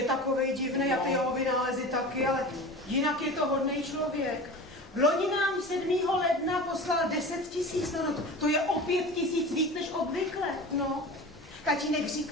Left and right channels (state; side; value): normal; both; correlation 0.34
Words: takovej divný a ty jeho vynálezy taky, ale jinak je to hodnej člověk. Loni nám 7. ledna poslal 10 000, no to je o 5 000 víc než obvykle, no. Tatínek